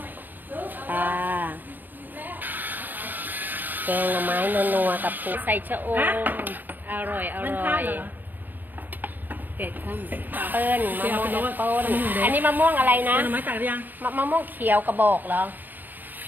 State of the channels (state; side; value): late; left; 0.088 ms